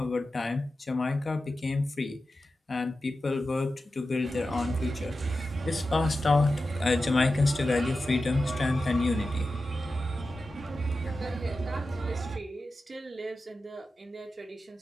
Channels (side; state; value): both; normal; correlation 0.92